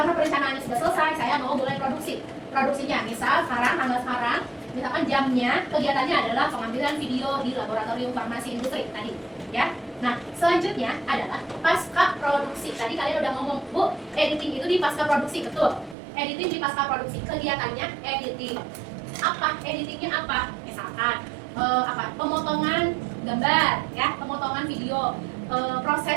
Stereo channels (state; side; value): drops out; left; at 16.0 s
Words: perencanaannya sudah selesai, saya mau mulai produksinya. Misal tanggal sekarang, misalkan jamnya, kegiatannya adalah pengambilan video di laboratorium farmasi industri tadi, ya. Nah, selanjutnya adalah pasca produksi. Tadi kalian udah ngomong, Bu, editing itu di pasca produksi, betul. Editing di pasca produksi, kegiatannya editing. Editingnya apa? Misalkan pemotongan gambar, ya, pemotongan video,